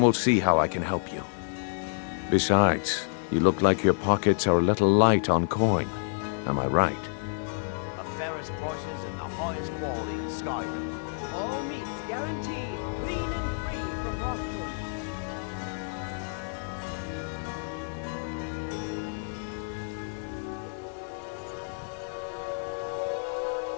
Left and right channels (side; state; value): right; silent; digital silence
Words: see how I can help you. Besides, you look like your pockets are a little light on coin. Am I right? The fairest prices and the highest quality in Skyrim. All meats guaranteed, clean and free from rockwood.